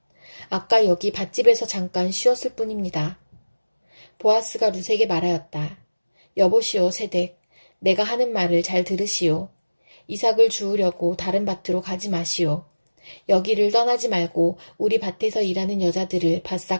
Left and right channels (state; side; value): inverted; both; correlation -1.00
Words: 아까 여기 밭집에서 잠깐 쉬었을 뿐입니다. 보아스가 룻에게 말하였다. 여보시오 세댁, 내가 하는 말을 잘 들으시오. 이삭을 주우려고 다른 밭으로 가지 마시오. 여기를 떠나지 말고 우리 밭에서 일하는 여자들을